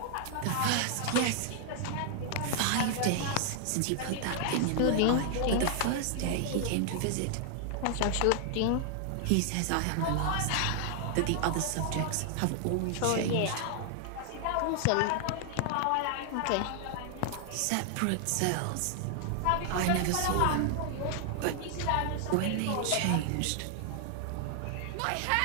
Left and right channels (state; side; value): different; both; correlation 0.00